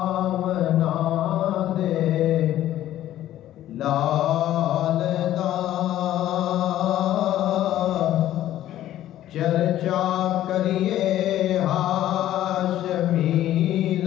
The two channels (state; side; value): quieter; right; 13.0 dB